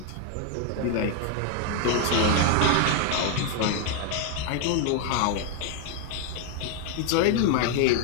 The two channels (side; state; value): both; different; correlation 0.01